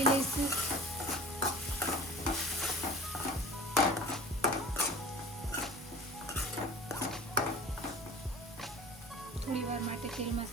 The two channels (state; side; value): normal; both; correlation 0.42